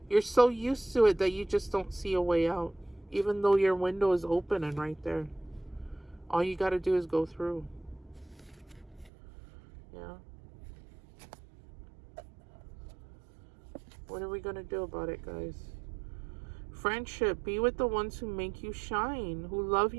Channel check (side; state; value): left; drops out; at 9.1 s